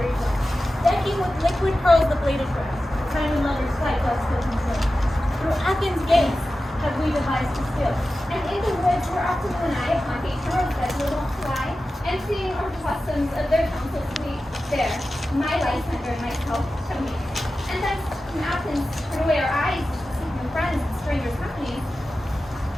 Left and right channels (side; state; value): both; normal; correlation 0.94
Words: ground, decking with liquid pearls the bladed grass, time and lovers fight doth still conceal. Through Athens' gates have we devised to steal. And in the woods where often you and I upon each rose bed will wont to lie, and seeing our customs of their counsels sweet, there, my Lysander and myself shall meet. And thence from Athens turn away our eyes to seek new friends and strangers' companies.